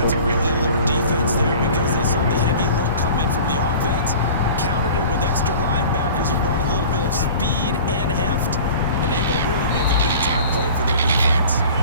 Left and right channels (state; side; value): inverted; both; correlation -0.42